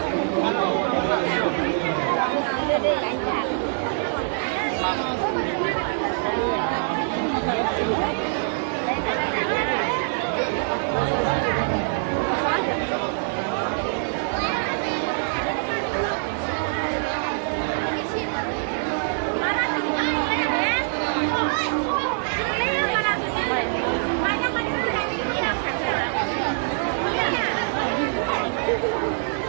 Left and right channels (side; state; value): left; silent; digital silence